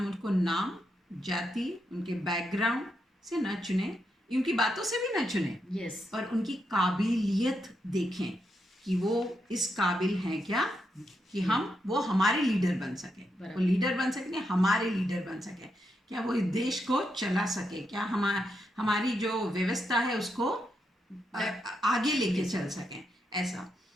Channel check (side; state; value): both; normal; correlation 0.82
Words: उनको नाम, जाति, उनके बैकग्राउंड से न चुने, उनकी बातों से भी न चुने। यस। और उनकी काबिलियत देखें कि वो इस काबिल हैं क्या कि वो हमारे लीडर बन सके। वो लीडर बन सके, हमारे लीडर बन सके। क्या वो इस देश को चला सके, क्या हमारी जो व्यवस्था है उसको आगे लेके चल सकें, ऐसा।